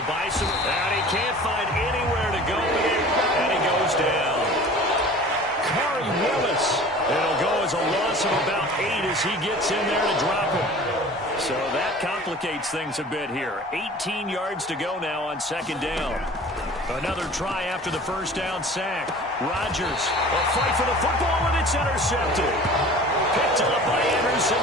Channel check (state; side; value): normal; both; correlation 0.43